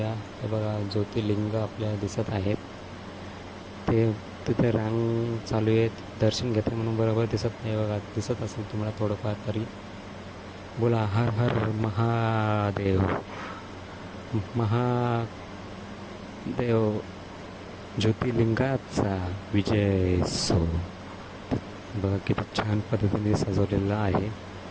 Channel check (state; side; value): identical; both; correlation 1.00